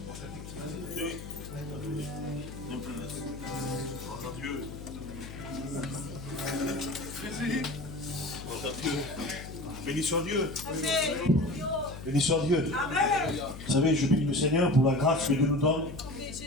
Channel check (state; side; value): noise; left; hum, 11 dB below the sound